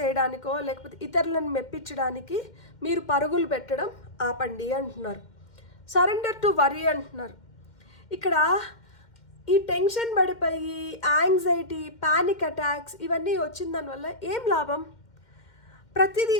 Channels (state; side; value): late; right; 2.1 ms